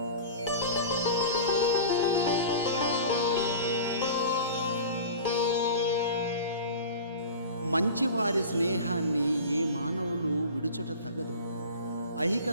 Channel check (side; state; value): both; inverted; correlation -0.36